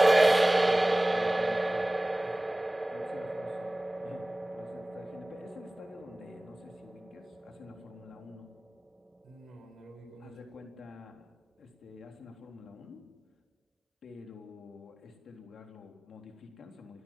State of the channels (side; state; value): both; normal; correlation 0.98